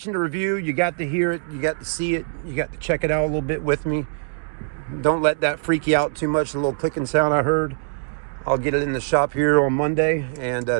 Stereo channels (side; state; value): left; silent; digital silence